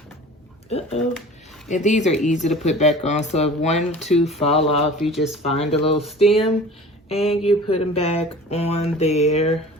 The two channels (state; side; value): normal; both; correlation 0.42